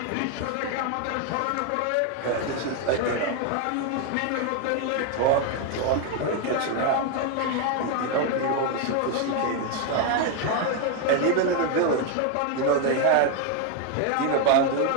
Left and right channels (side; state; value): both; different; correlation 0.01